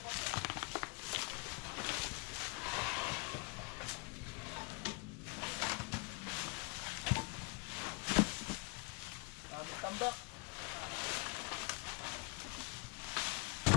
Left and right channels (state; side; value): quieter; right; 30.9 dB